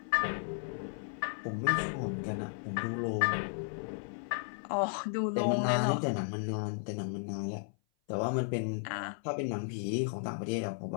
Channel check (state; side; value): silent; right; 55 dB below the other